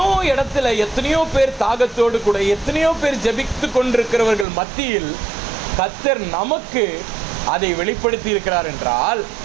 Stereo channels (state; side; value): drops out; left; at 4.5 s